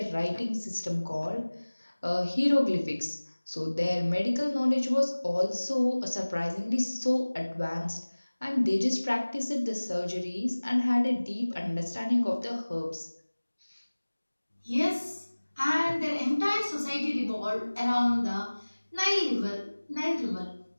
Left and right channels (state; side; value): inverted; both; correlation -1.00